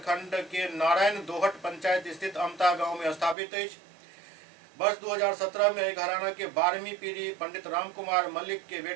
के नारायण दोहट पंचायत स्थित अमता गांव में स्थापित है। वर्ष 2017 में घराना के 12वीं पीढ़ी पंडित रामकुमार मल्लिक के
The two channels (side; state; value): left; drops out; at 3.4 s